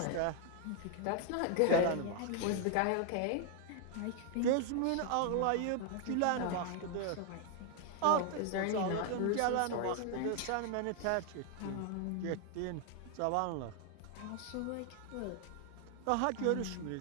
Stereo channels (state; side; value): different; both; correlation 0.00